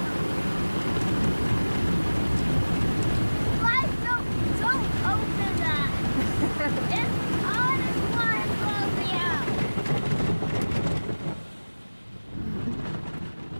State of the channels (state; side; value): inverted; both; correlation -1.00